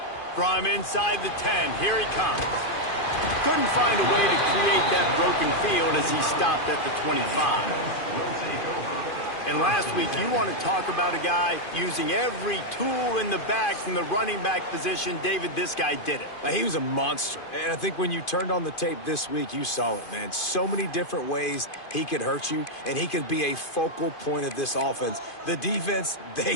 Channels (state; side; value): late; right; 2.5 ms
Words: From inside the 10, here he comes. Couldn't find a way to create that broken field as he stopped at the 25. And last week, you want to talk about a guy using every tool in the bag from the running back position. David, this guy did it. He was a monster. And I think when you turned on the tape this week, you saw it, man. So many different ways he could hurt you, and he could be a focal point of this offense. The defense,